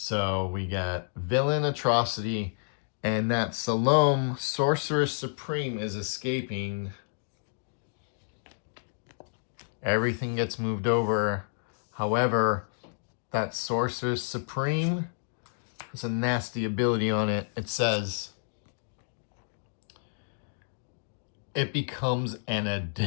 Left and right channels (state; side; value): silent; right; digital silence